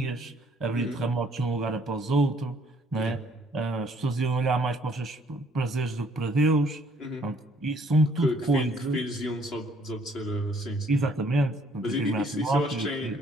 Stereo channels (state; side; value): normal; both; correlation 0.62